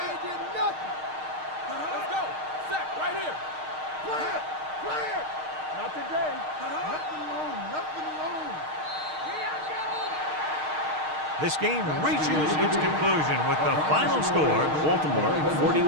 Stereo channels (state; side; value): late; left; 6.5 ms